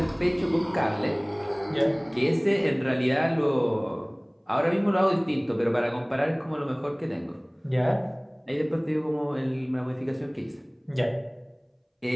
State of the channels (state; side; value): identical; both; correlation 1.00